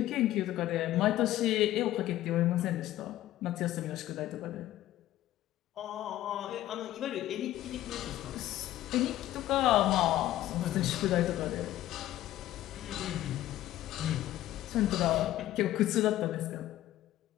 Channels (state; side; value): quieter; right; 14.2 dB